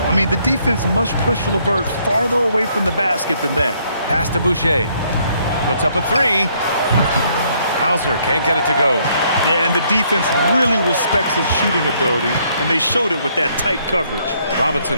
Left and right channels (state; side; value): inverted; both; correlation -0.68